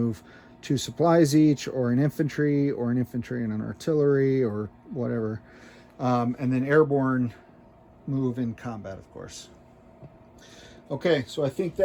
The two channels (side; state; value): both; identical; correlation 1.00